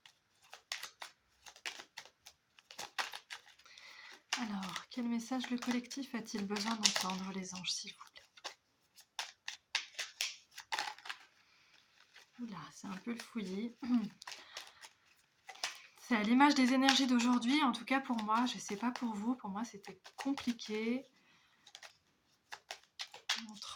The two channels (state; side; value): identical; both; correlation 1.00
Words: Alors, quel message le collectif a-t-il besoin d'entendre, les anges, s'il vous plaît? Oula, c'est un peu le fouillis. C'est à l'image des énergies d'aujourd'hui, en tout cas pour moi, je sais pas pour vous, pour moi c'était compliqué.